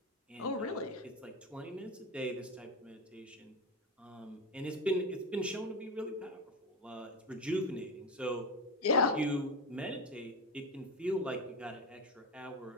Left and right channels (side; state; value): both; normal; correlation 0.18